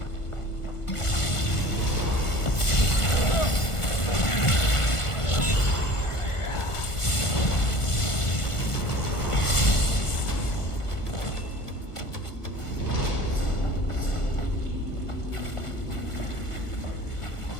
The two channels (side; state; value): right; late; 1.5 ms